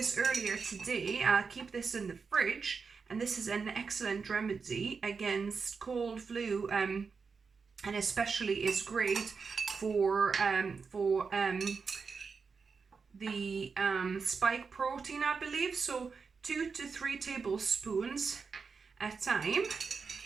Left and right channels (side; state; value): left; quieter; 5.2 dB